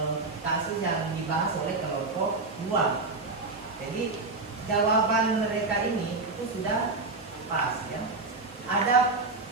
kasus yang dibahas oleh kelompok 2. Jadi jawaban mereka ini itu sudah pas ya. Ada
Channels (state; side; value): quieter; left; 3.6 dB